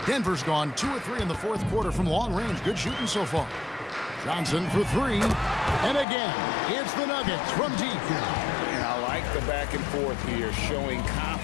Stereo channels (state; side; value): drops out; right; at 6.1 s